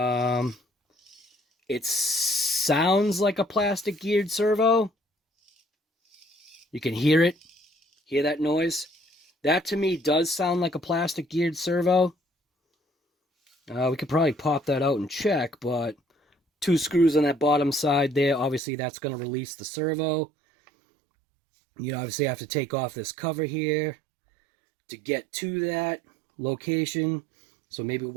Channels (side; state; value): left; drops out; at 18.6 s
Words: It sounds like a plastic geared servo. You can hear it. Hear that noise? That to me does sound like a plastic geared servo. We could probably pop that out and check, but 2 screws on that bottom side there. Obviously, that's going to release the servo. You obviously have to take off this cover here to get to that location. So maybe